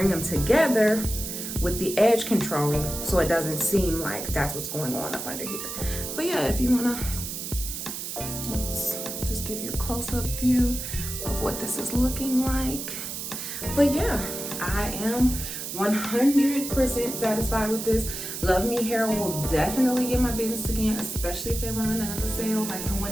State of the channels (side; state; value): right; noise; hiss, 6 dB below the sound